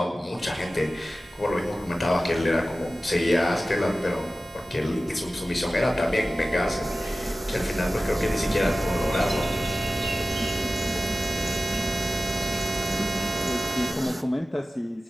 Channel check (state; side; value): normal; both; correlation 0.95